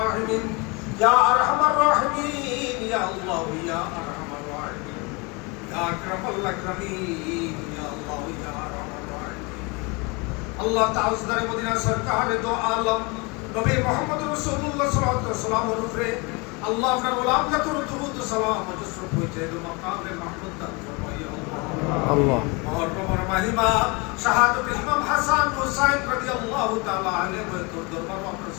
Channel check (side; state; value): right; quieter; 28.4 dB